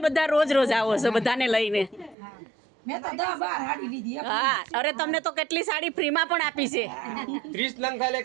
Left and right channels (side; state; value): left; drops out; at 2.1 s